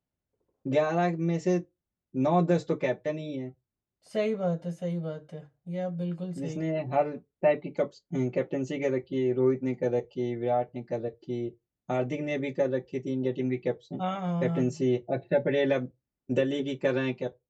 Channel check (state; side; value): identical; both; correlation 1.00